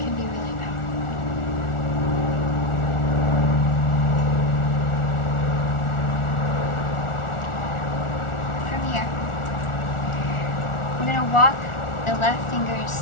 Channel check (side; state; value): right; late; 1.4 ms